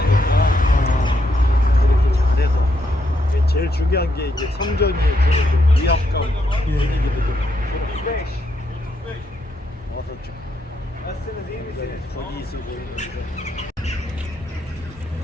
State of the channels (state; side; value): normal; both; correlation 0.78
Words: 아, 이렇게 잘해서 이게 제일 중요한 게 이제 성전이 주는 그 위압감 예. 분위기도 좀 어서 좀 거기 있어 보이는데